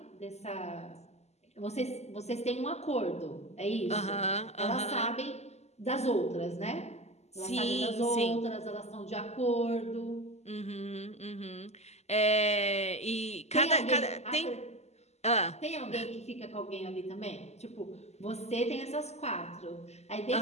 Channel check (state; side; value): late; right; 0.32 ms